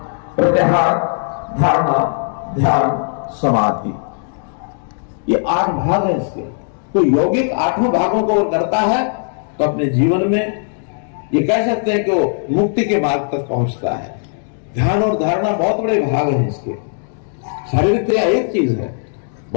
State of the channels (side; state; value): right; silent; digital silence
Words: प्रत्याहार, धारणा, ध्यान, समाधि, ये 8 भाग हैं इसके। तो यौगिक 8 भागों को करता है तो अपने जीवन में ये कह सकते हैं कि वो मुक्ति के मार्ग तक पहुंचता है। ध्यान और धारणा बहुत बड़े भाग हैं इसके। शारीरिक क्रिया एक चीज है,